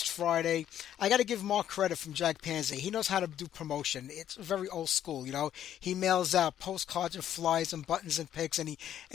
Friday. I got to give Mark credit from Jack Panzer. He knows how to do promotion. It's very old school, you know. He mails out postcards and flyers and buttons and pics, and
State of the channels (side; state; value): right; quieter; 10.7 dB